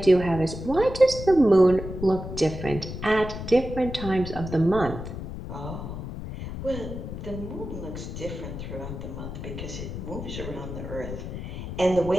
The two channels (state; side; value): noise; left; rumble, 8 dB below the sound